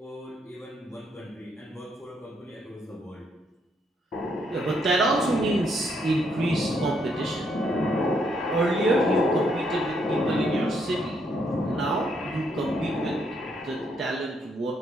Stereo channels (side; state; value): both; normal; correlation 0.74